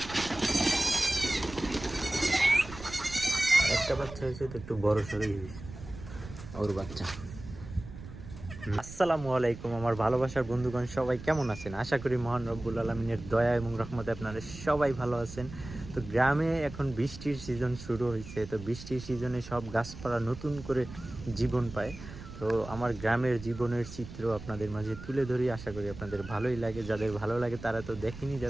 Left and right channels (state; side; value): noise; right; rumble, 13 dB below the sound